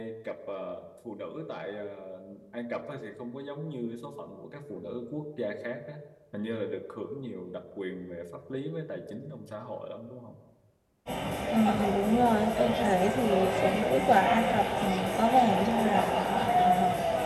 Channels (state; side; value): identical; both; correlation 1.00